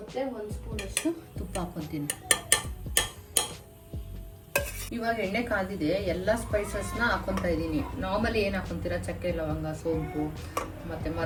1 ಸ್ಪೂನಷ್ಟು ತುಪ್ಪ ಹಾಕೊತೀನಿ. ಇವಾಗ ಎಣ್ಣೆ ಕಾದಿದೆ, ಎಲ್ಲ ಸ್ಪೈಸಸ್ನ ಹಾಕೊತಾ ಇದ್ದೀನಿ. ನಾರ್ಮಲಿ ಏನು ಹಾಕೊತೀರಾ, ಚಕ್ಕೆ, ಲವಂಗ, ಸೋಂಪು ಮತ್ತು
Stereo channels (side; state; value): both; identical; correlation 1.00